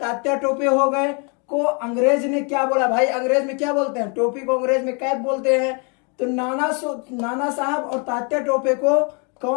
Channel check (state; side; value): quieter; right; 35.3 dB